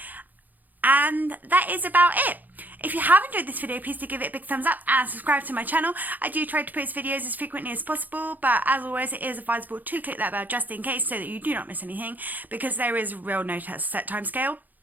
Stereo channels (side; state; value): left; late; 0.084 ms